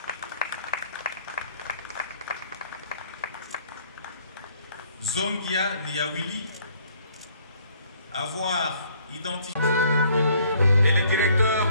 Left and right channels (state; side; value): inverted; both; correlation -0.62